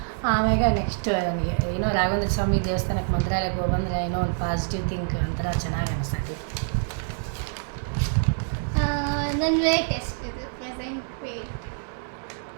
ಆಮ್ಯಾಗ ನೆಕ್ಸ್ಟ್ ನನಗೆ ಏನೋ ರಾಘವೇಂದ್ರ ಸ್ವಾಮಿ ದೇವಸ್ಥಾನಕ್ಕೆ ಮಂತ್ರಾಲಯಕ್ಕೆ ಹೋಗಂದ್ರೆ ಏನೋ ಒಂದು ಪಾಸಿಟಿವ್ ಥಿಂಕ್ ಒಂಥರ ಚೆನ್ನಾಗಿ ಅನಿಸ್ತೈತಿ. ನನ್ನ ವೇಟ್ ಎಷ್ಟಿದೆ? Present wait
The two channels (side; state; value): left; silent; 58 dB below the other